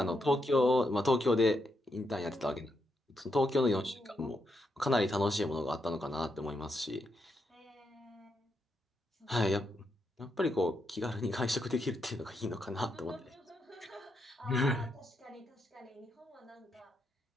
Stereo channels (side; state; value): both; normal; correlation 0.81